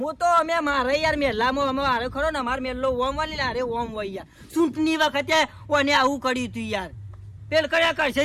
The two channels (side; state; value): both; identical; correlation 1.00